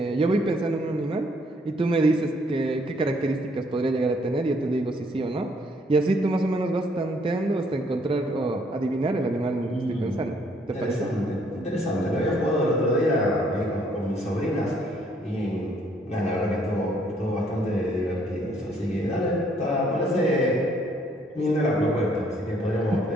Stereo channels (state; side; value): normal; both; correlation 0.66